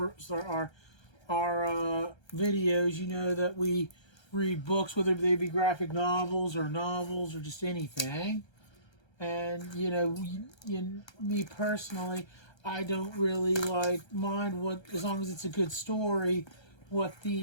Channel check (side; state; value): right; late; 1.3 ms